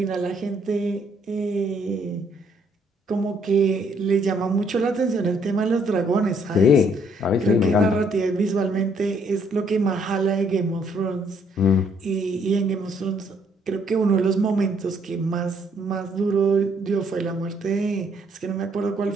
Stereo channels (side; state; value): both; normal; correlation 0.67